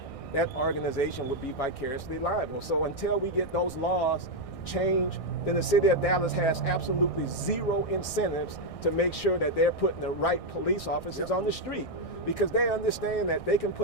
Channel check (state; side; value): late; right; 1.6 ms